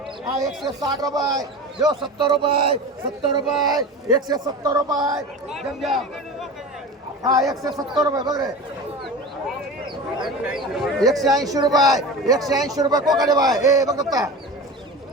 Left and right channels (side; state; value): both; normal; correlation 0.31